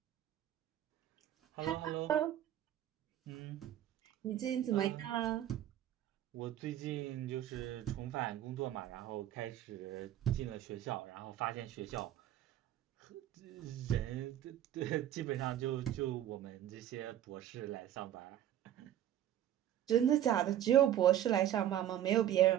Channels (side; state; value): left; quieter; 11.7 dB